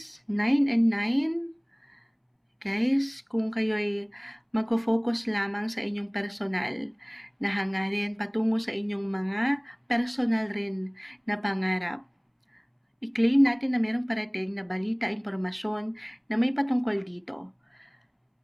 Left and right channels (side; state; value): both; identical; correlation 1.00